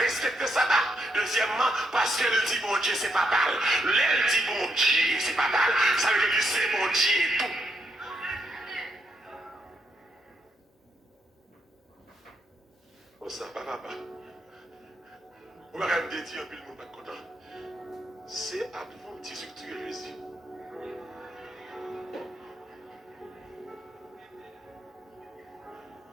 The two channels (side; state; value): both; normal; correlation 0.78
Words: ça. Deuxièmement, parce qu'elle dit bon Dieu, c'est pas mal. Elle dit bon Dieu, c'est pas mal. Ça veut dire que c'est bon Dieu et tout. Oh, ça va, papa. On va quand même dire un peu le monde pas content. C'est adventiste que tu es Jésus.